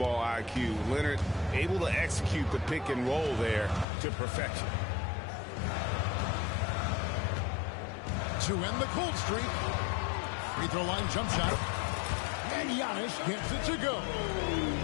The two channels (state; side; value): drops out; right; at 3.9 s